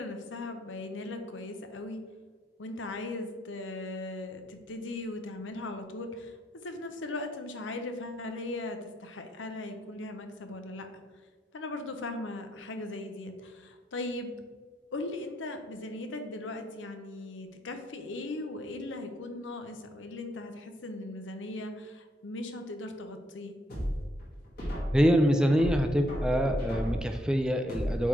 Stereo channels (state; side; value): normal; both; correlation 0.76